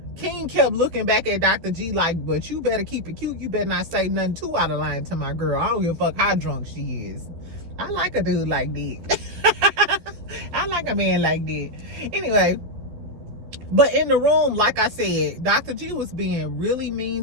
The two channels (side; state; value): left; late; 12 ms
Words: King kept looking back at Dr. G like, but you better keep it cute. You better not say nothing too out of line to my girl. I don't give a fuck how drunk she is. I like a dude like that. I like a man like that. Anyway, but in the room, like I said, Dr. G was being really mean